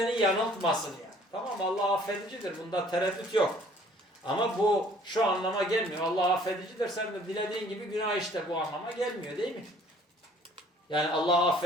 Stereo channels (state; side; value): normal; both; correlation 0.56